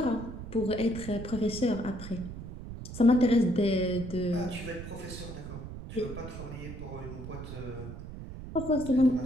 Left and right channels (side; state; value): right; noise; rumble, 10 dB below the sound